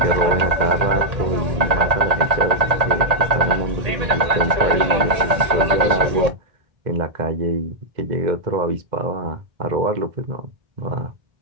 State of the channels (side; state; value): left; late; 1.8 ms